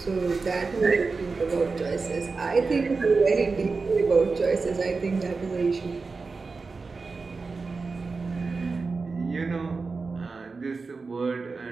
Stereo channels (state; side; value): quieter; left; 4.3 dB